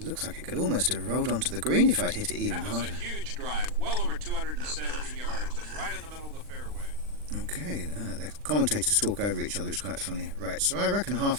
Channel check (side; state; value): left; late; 40 ms